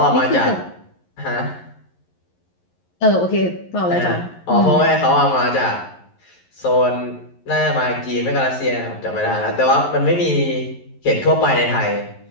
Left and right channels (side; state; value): right; late; 11 ms